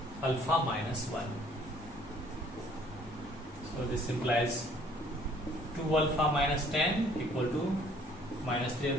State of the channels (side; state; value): both; normal; correlation 0.58